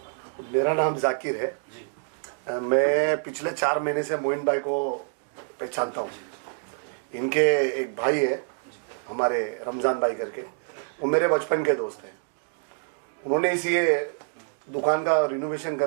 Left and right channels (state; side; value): silent; left; digital silence